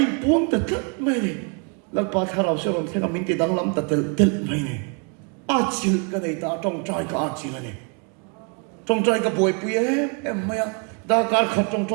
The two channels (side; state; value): left; quieter; 36.5 dB